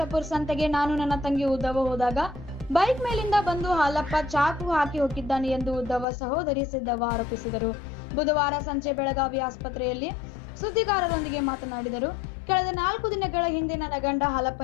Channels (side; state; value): right; drops out; at 6.1 s